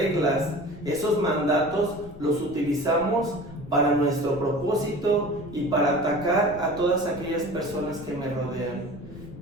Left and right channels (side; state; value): left; noise; rumble, 16 dB below the sound